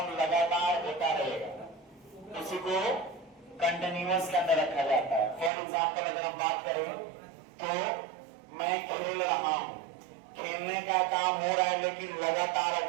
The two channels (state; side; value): drops out; left; at 5.5 s